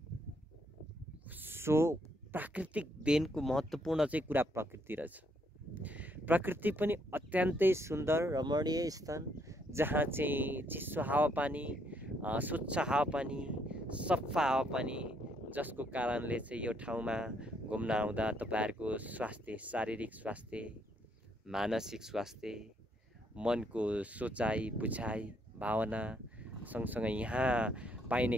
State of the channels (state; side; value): normal; both; correlation 0.72